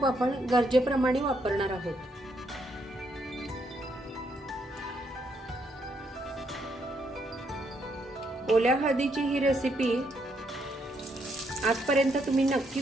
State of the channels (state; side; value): normal; both; correlation 0.75